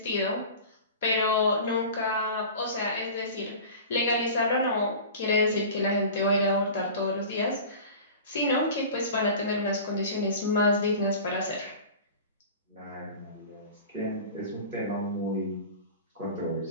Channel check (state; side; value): inverted; both; correlation -0.37